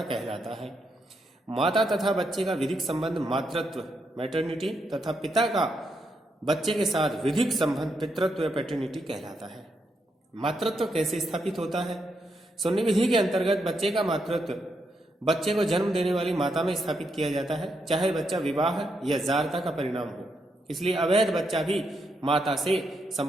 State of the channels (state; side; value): normal; both; correlation 0.80